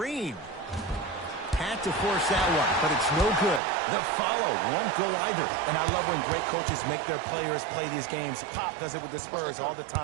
had to force that one, but it's no good. The follow won't go either. And I love when great coaches make their players play these games. Pop does it with the Spurs all the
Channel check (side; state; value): left; drops out; at 3.6 s